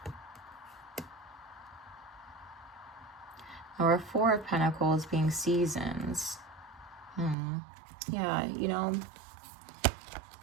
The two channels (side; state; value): left; drops out; at 7.4 s